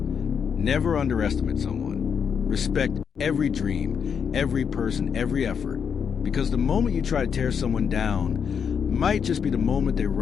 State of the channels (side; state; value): right; quieter; 7.0 dB